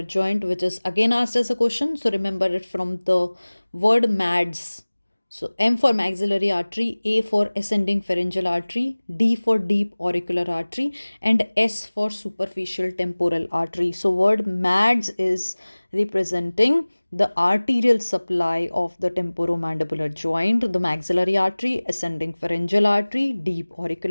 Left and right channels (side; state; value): both; inverted; correlation -1.00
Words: joint, which is again asked as a question. So remember it from the word MADS. So M for maxillary artery, A for ascending pharyngeal artery, D for deep auricular artery, and S for superficial temporal artery. So word MADS is representing the arterial supply of the temporomandibular joint, the maxillary artery, ascending pharyngeal artery, deep